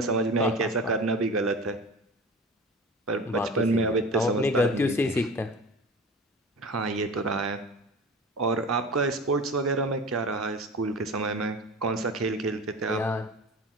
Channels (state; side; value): normal; both; correlation 0.34